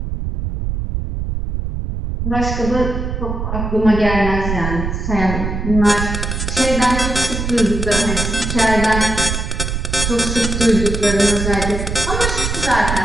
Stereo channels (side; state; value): right; noise; rumble, 3 dB below the sound